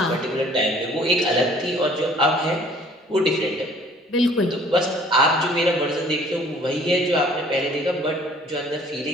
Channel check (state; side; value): normal; both; correlation 0.55